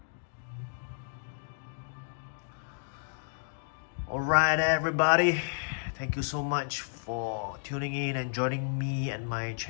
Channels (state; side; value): silent; right; digital silence